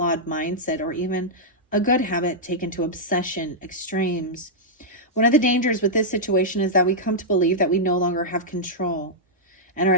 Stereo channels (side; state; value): both; normal; correlation -0.09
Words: mindset, or even a good habit taken to obsession extremes. One of the dangers with this situation is that we come to believe that we no longer have control and are